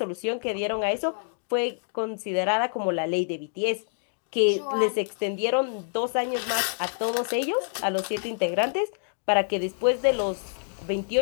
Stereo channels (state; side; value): silent; right; digital silence